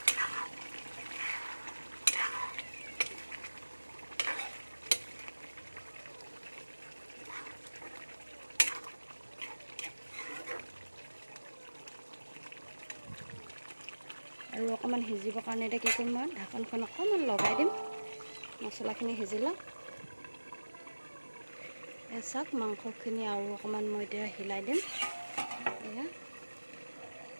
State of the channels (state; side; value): inverted; both; correlation -1.00